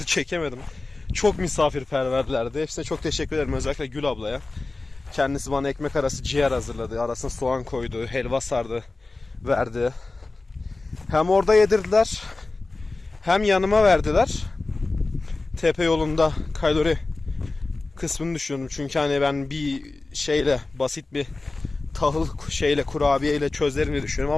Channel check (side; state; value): right; quieter; 3.4 dB